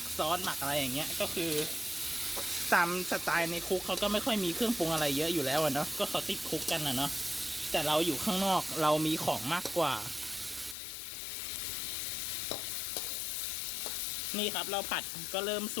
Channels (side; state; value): right; drops out; at 10.8 s